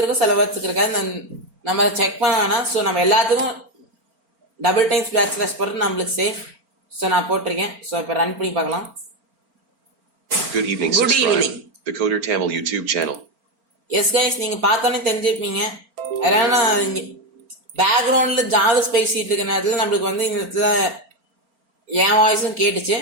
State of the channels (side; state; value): left; late; 4.4 ms